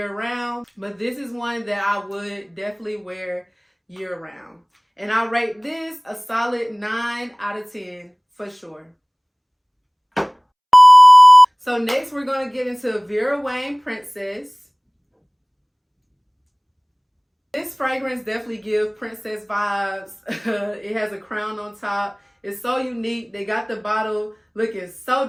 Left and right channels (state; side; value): identical; both; correlation 1.00